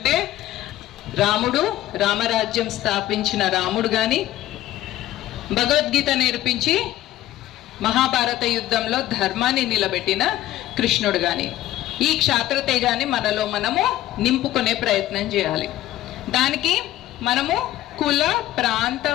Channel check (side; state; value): right; quieter; 14.5 dB